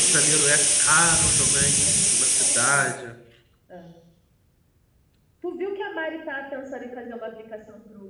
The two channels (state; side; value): identical; both; correlation 1.00